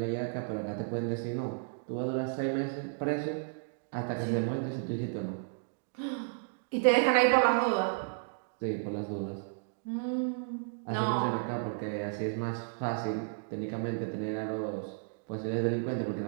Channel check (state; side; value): silent; left; digital silence